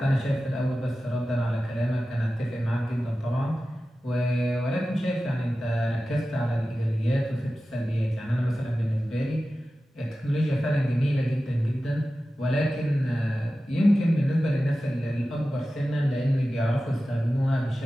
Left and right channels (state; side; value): normal; both; correlation 0.94